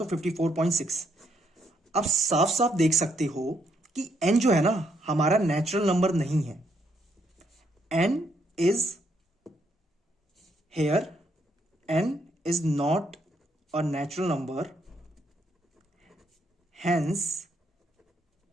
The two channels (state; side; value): normal; both; correlation 0.74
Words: 54.6। अब साफ साफ देख सकते हो कि n जो है ना हमारा नेचुरल नंबर नहीं है। n is here, n is not a natural number, hence